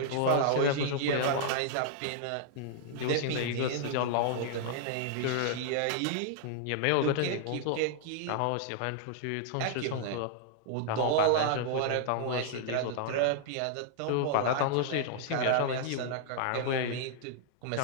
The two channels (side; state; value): both; different; correlation -0.01